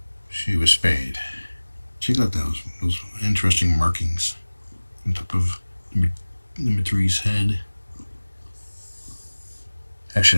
she was spayed. Check out those interesting markings on top of number 3's head.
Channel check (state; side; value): inverted; both; correlation -1.00